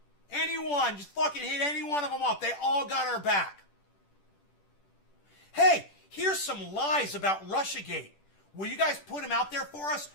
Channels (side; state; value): right; late; 10 ms